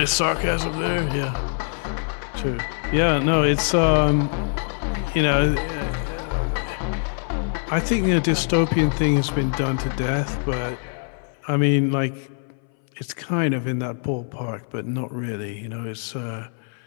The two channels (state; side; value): silent; right; 60 dB below the other